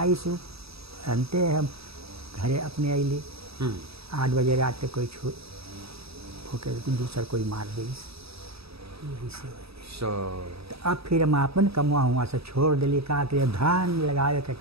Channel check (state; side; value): late; left; 0.77 ms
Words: सु अंते हम घरे अपने अली 8 बजे रात तक कोई छू होकर दूसर कोई मार दी यही से हो गई। सो तो अब फिर हम अपन कमुआ हुआ से छोड़ दिली का कि धान लगावे के